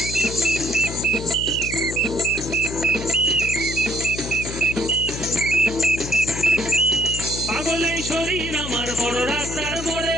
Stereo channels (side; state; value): left; noise; hum, 7 dB below the sound